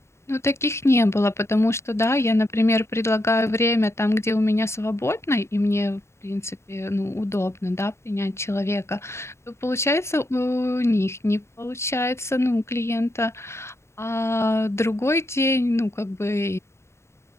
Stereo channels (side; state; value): right; late; 0.13 ms